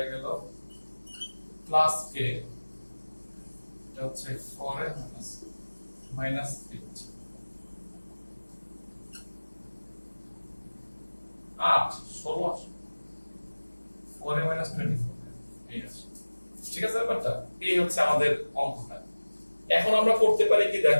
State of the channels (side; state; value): both; inverted; correlation -1.00